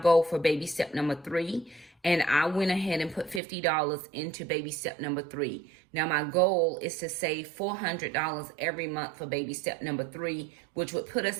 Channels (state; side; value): drops out; left; at 3.4 s